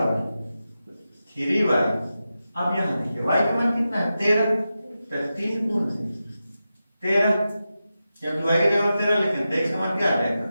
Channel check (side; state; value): both; inverted; correlation -0.91